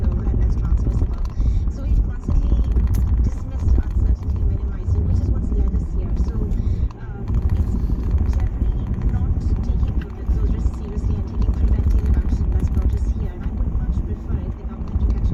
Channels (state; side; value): identical; both; correlation 1.00